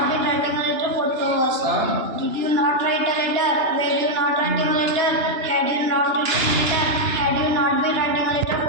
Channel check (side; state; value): left; late; 2.9 ms